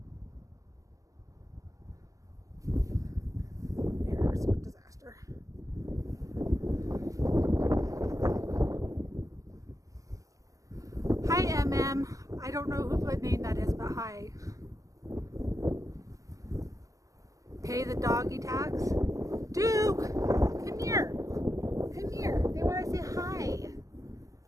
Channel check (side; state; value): left; late; 0.16 ms